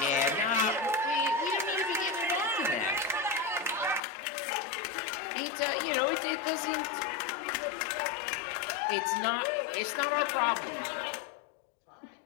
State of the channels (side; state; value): right; drops out; at 4.0 s